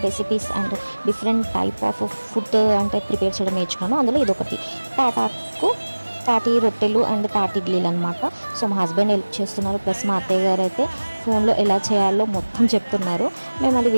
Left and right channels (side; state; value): both; inverted; correlation -1.00